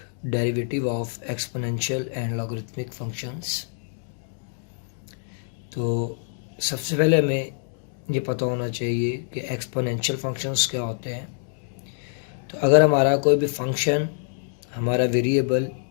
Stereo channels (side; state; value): right; silent; digital silence